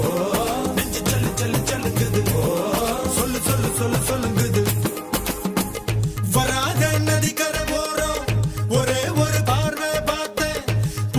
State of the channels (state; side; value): identical; both; correlation 1.00